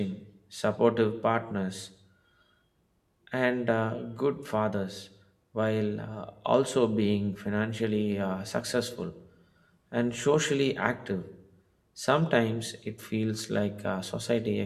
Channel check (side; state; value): both; identical; correlation 1.00